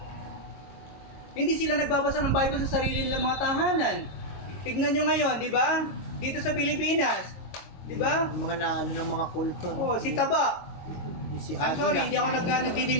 hindi sila nagbabasa ng Bible sa sarili nilang mga tahanan. Tignan nyo ngayon, di ba? Dito sa Pilipinas, di ba? Mga na, ano ng mga kulto. Oh, si Taba. Si I'm sorry, hindi ako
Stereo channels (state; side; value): late; right; 22 ms